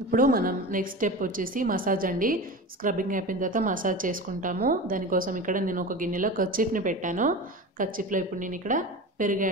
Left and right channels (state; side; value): normal; both; correlation 0.30